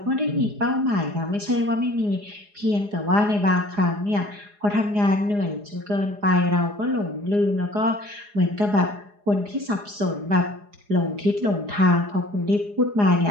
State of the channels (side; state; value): left; late; 4.8 ms